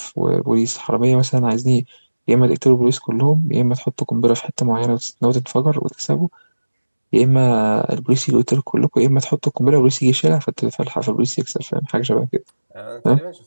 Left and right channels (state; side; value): inverted; both; correlation -1.00